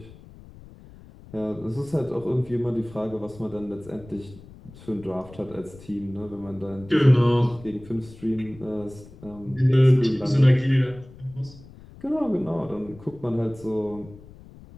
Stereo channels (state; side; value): noise; left; rumble, 20 dB below the sound